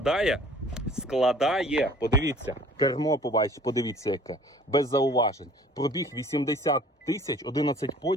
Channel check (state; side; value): normal; both; correlation 0.52